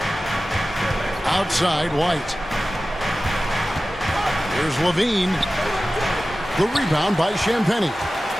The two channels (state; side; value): normal; both; correlation 0.96